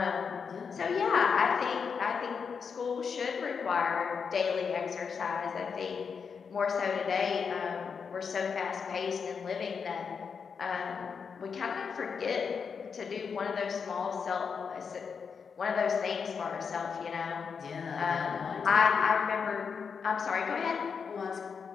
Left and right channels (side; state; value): right; quieter; 6.0 dB